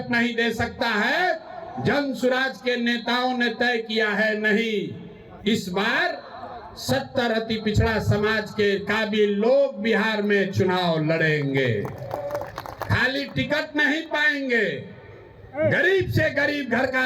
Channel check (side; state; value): both; identical; correlation 1.00